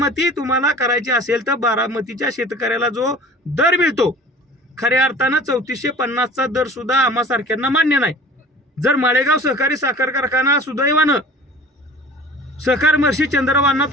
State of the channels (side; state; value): both; normal; correlation 0.44